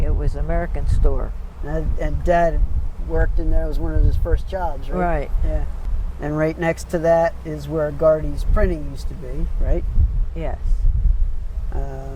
it was American Store. And Dad worked in there. It was one of his first jobs, right? Right. Yeah. And right next to that is where Gardy's Printing used to be, right? Yes.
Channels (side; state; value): both; identical; correlation 1.00